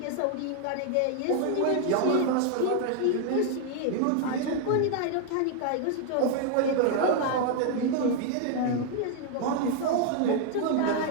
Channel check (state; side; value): different; both; correlation 0.00